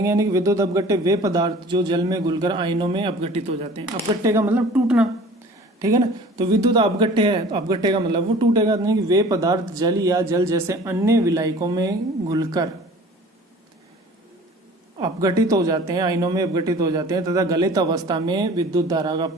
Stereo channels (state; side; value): normal; both; correlation 0.45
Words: यानी कि विद्युत अपघट्य वे पदार्थ जो जल में घुलकर आयनों में अपघटित हो जाते हैं। अपघट्य का मतलब टूटना, ठीक है ना। तो विद्युत अपघट्य है तो अपघट्य का मतलब वो टूटेगा, नहीं कि वे पदार्थ जल या जल जैसे अन्य विलायकों में घुलकर अपघटित हो जाते हैं, आयनों में अपघटित हो जाते हैं तथा गलित अवस्था में विद्युत धारा का